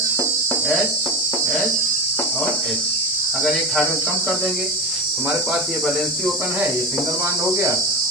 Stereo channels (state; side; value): normal; both; correlation 0.22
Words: H H और H। अगर एक हाइड्रोजन कम कर देंगे तो हमारे पास ये वैलेंसी ओपन है, ये सिंगल बॉन्ड हो गया।